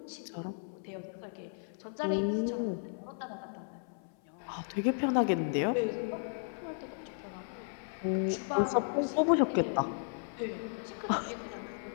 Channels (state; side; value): silent; right; 55 dB below the other